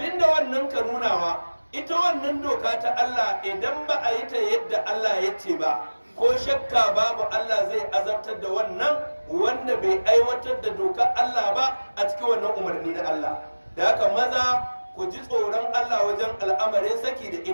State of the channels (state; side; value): inverted; both; correlation -1.00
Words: wannan ka nunawa, ita wannan doka ta Allah idan ba a yi ta yadda Allah ya ce ba, ko shakka babu Allah zai azabtar da wannan wanda bai aiwatar da dokar Allah ba a cikin wannan umarni na Allah. Da haka maza ku ji tsoron Allah wajen al'amarin saki da